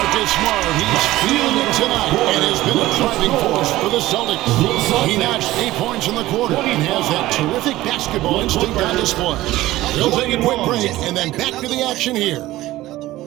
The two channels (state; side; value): quieter; left; 16.6 dB